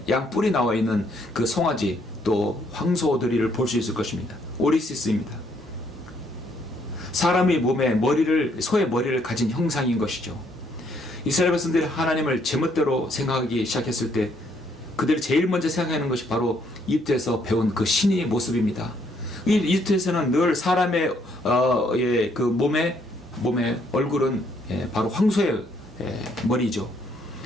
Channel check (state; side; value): normal; both; correlation 0.69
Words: 양뿔이 나와 있는 그 송아지 또 황소들이를 볼 수 있을 것입니다. 오리시스입니다. 사람의 몸에 소의 머리를 가진 형상인 것이죠. 이스라엘 백성들이 하나님을 제멋대로 생각하기 시작했을 때 그들이 제일 먼저 생각하는 것이 바로 이집트에서 배운 그 신의 모습입니다. 이집트에서는 늘 사람의 그 몸의 얼굴은 바로 황소의 머리죠.